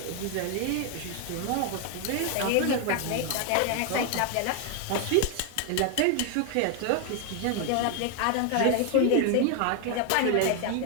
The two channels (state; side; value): different; both; correlation 0.01